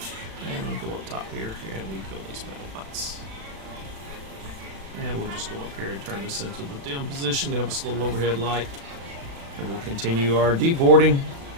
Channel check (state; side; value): late; left; 36 ms